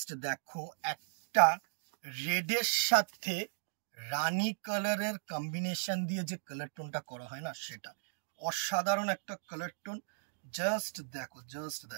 দেখো, একটা রেডের সাথে রানী কালারের কম্বিনেশন দিয়ে যে কালার টোনটা করা হয় না, সেটা অসাধারণ একটা কালার টোন। জাস্ট দেখো, জাস্ট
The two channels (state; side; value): silent; left; digital silence